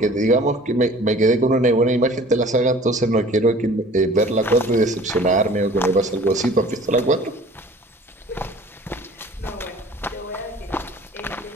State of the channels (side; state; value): both; normal; correlation 0.48